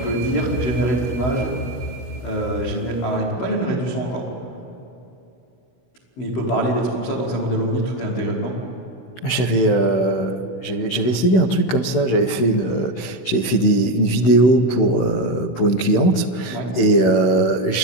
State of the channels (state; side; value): late; right; 16 ms